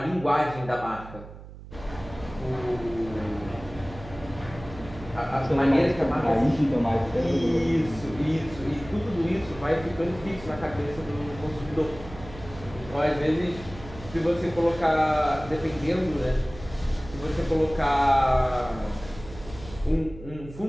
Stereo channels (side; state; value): right; noise; hum, 15 dB below the sound